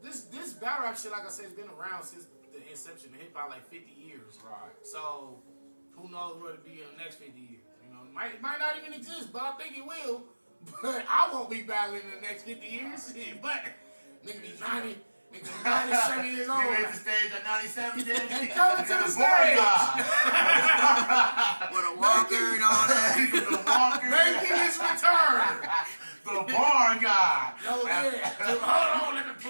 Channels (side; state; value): both; inverted; correlation -1.00